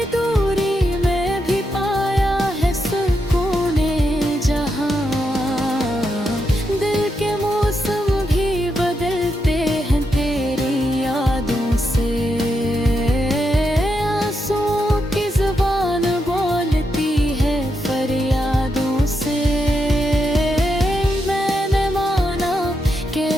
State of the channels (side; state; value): both; normal; correlation 0.83